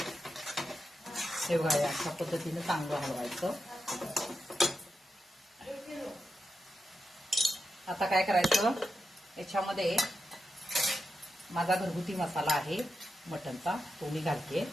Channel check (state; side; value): normal; both; correlation 0.87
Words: हे बघा, अशा पद्धतीने चांगलं हलवायचं. आता काय करायचं, याच्यामध्ये माझा घरगुती मसाला आहे मटणचा, तो मी घालते.